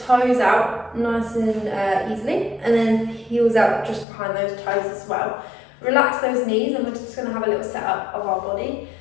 out nice and easily, and then heels out just behind those toes as well. Relax those knees, and we're just going to have a little setup of our body.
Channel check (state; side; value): drops out; right; at 4.0 s